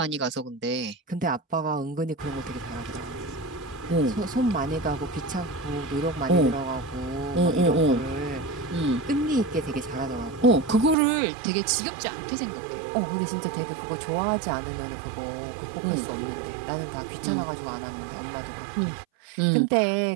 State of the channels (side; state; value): left; drops out; at 11.0 s